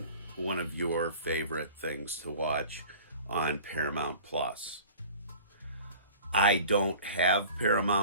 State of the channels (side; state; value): both; inverted; correlation -0.43